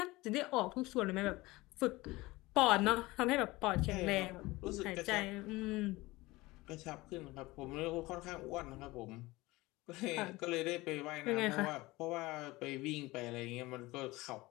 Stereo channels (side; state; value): right; quieter; 20.6 dB